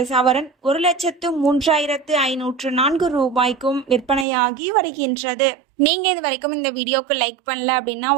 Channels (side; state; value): left; drops out; at 4.2 s